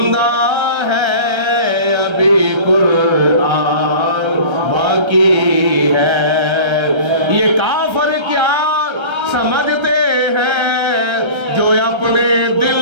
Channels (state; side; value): late; left; 1.3 ms